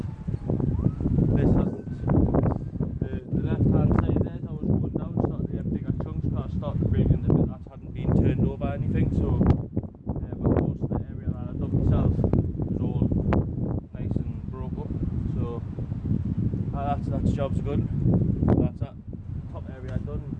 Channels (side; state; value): both; identical; correlation 1.00